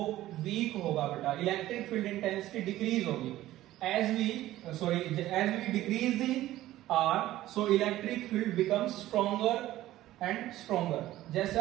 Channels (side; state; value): left; quieter; 15.0 dB